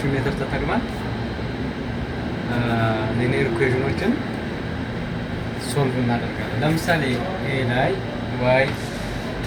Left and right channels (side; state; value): both; identical; correlation 1.00